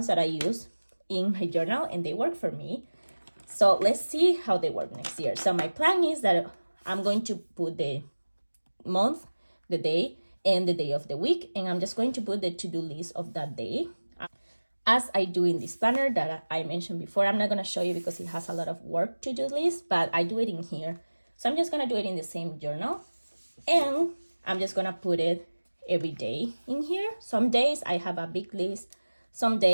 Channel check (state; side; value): inverted; both; correlation -1.00